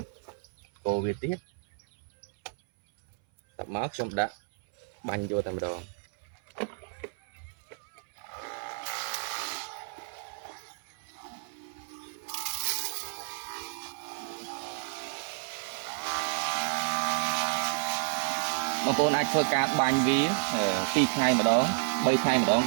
កូរវាទៀតតមកខ្ញុំដាក់បាញ់យកតែម្ដងបងប្អូនអាចធ្វើការបាញ់វា2ថ្ងៃម្ដង3ថ្ងៃម្ដង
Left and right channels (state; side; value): silent; left; 57 dB below the other